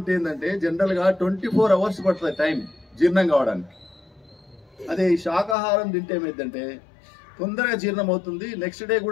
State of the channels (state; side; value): drops out; right; at 5.6 s